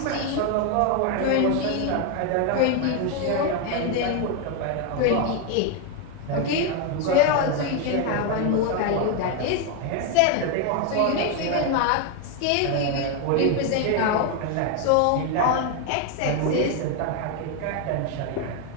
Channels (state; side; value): different; both; correlation 0.01